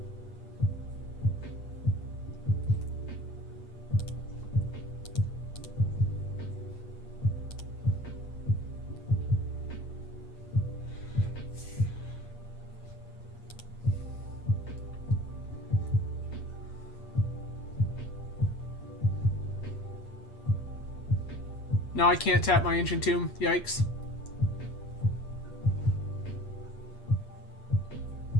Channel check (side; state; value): right; late; 8.5 ms